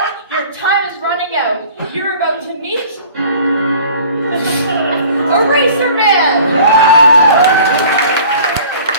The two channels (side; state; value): both; inverted; correlation -0.48